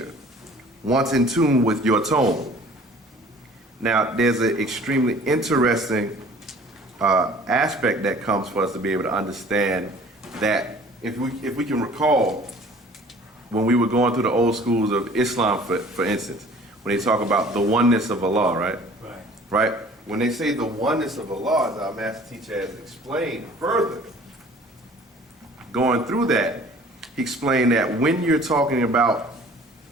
once in tune with your tone. Now, there's an extremely interesting aspect that comes for us to be able to understand that if we can recall when we were going through the old schools of Islam, for instance, when they talk about the oneness of Allah, right? Right. Right? When they say the oneness of Allah, as our master teacher has explained further, going through that, he explained that when you're talking about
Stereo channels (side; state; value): both; normal; correlation 0.50